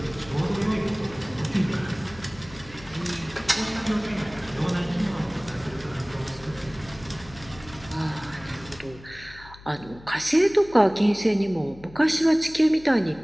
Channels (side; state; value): left; noise; hum, 20 dB below the sound